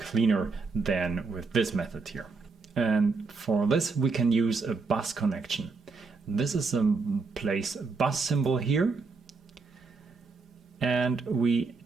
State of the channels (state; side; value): quieter; left; 4.3 dB